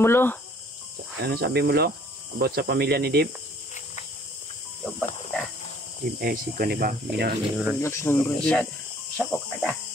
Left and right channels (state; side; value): normal; both; correlation 0.58